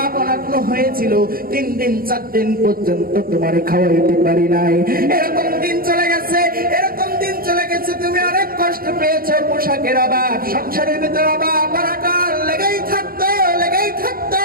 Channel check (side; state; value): left; late; 0.42 ms